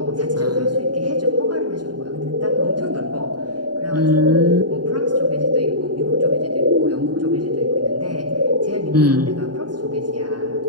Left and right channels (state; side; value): late; left; 0.70 ms